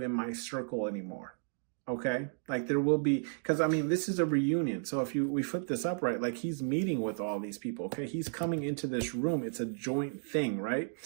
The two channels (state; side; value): silent; left; digital silence